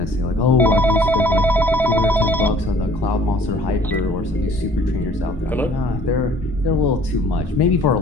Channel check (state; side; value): normal; both; correlation 0.54